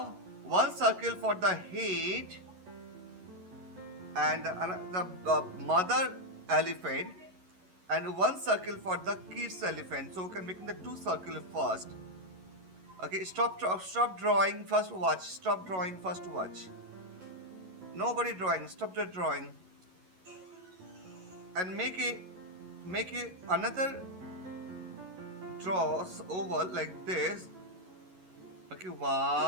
one circle for the head and the mother elephant, and one circle for the kids elephant. So we can make the two circles first. Okay, stop drawing, first watch. Stop drawing, first watch. Nobody drawing, stop the drawing. And make a another draws oval like this. Okay,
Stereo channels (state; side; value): late; left; 11 ms